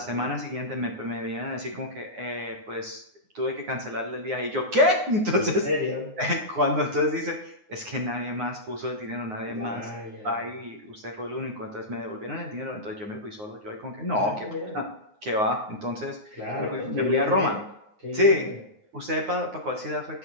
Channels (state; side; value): late; left; 9.6 ms